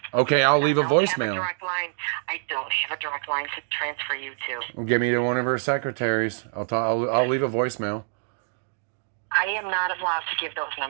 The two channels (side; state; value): left; silent; digital silence